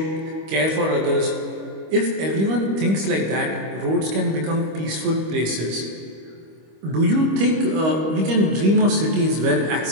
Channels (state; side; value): late; left; 25 ms